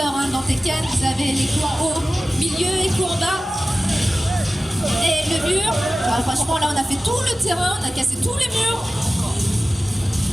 dans Tekken. Vous avez les coups en haut, milieu et coups en bas. Et le mur. Alors, franchement, là, on a fait tout le terrain. On a cassé tous les murs.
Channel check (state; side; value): normal; both; correlation 0.95